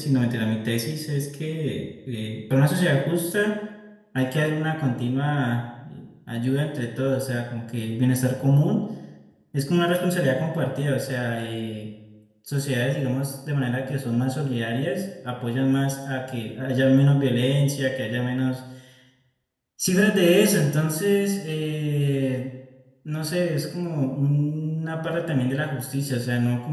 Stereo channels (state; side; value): identical; both; correlation 1.00